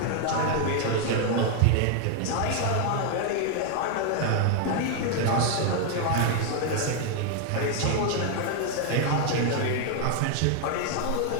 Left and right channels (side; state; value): both; different; correlation 0.00